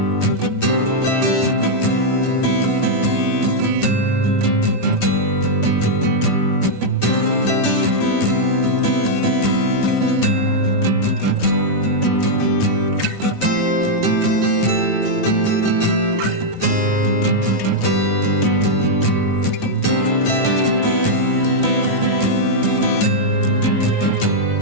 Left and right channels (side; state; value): right; late; 9.2 ms